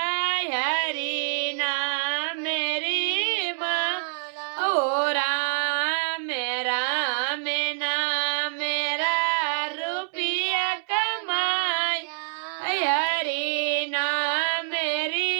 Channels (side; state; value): left; silent; 61 dB below the other